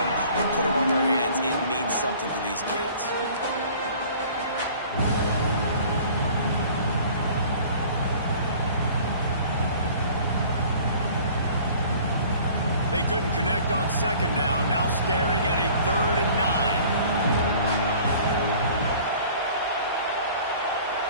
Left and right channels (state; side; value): inverted; both; correlation -0.49